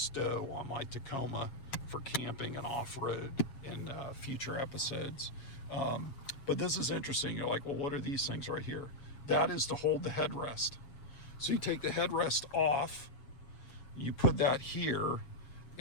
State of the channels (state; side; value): late; right; 7.4 ms